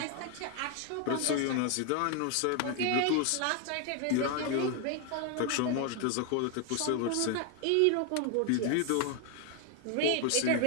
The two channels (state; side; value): different; both; correlation 0.01